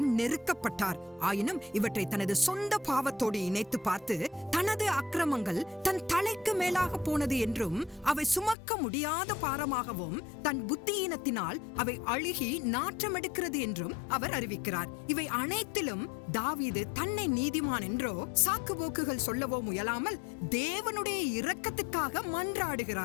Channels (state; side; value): drops out; right; at 8.6 s